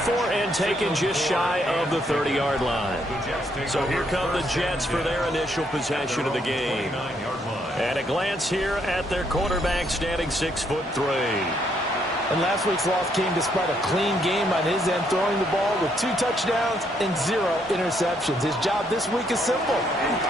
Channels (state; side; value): normal; both; correlation 0.73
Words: and taken just shy of the 30-yard line. So here come the Jets for their initial possession of the game. And a glance here at their quarterback standing 6'3". And last week's loss came despite a clean game on his end, throwing the ball with 2 touchdowns and 0 interceptions. His job this week is simple.